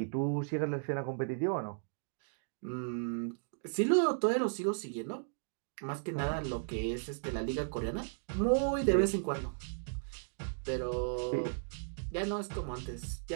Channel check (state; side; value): silent; left; digital silence